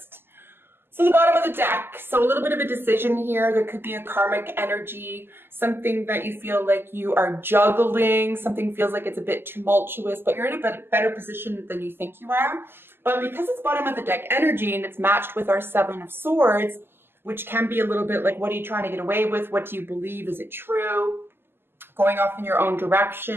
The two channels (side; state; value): left; late; 0.11 ms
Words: So the bottom of the deck, so a little bit of a decision here. There could be a karmic energy, something that you feel like you are juggling, something feels like it's a bit tumultuous, but you're in a better position than you think you are. But because it's bottom of the deck energy and it's matched with our 7 of Swords, which can be a little bit like, what are you trying to get away with? What do you believe? Is it true? Going off in your own